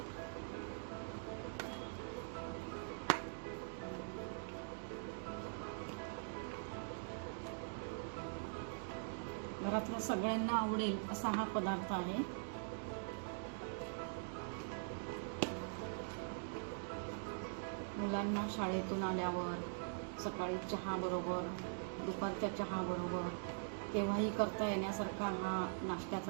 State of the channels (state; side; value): silent; left; digital silence